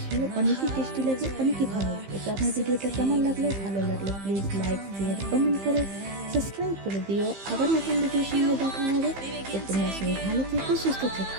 অনেকই টেস্টি লাগে, অনেকই ভালো লাগে। তো আমার ভিডিওটা কেমন লাগলো? ভালো লাগলে প্লিজ লাইক, শেয়ার, কমেন্ট করো, সাবস্ক্রাইব করে দিও। আবার নতুন ভিডিওর সঙ্গে দেখা হবে। তো তোমরা সবাই ভালো থেকো, সুস্থ থেকো।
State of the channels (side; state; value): left; late; 15 ms